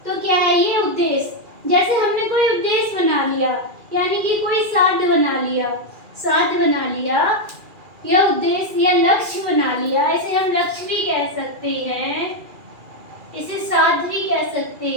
तो क्या है ये उद्देश्य? जैसे हमने कोई उद्देश्य बना लिया, यानी कि कोई साध्य बना लिया या उद्देश्य या लक्ष्य बना लिया। इसे हम लक्ष्य भी कह सकते हैं, इसे साध्य भी कह सकते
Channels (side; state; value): left; late; 2.4 ms